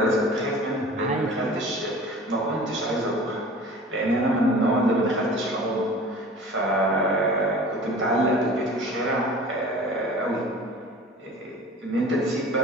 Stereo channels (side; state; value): both; normal; correlation 0.42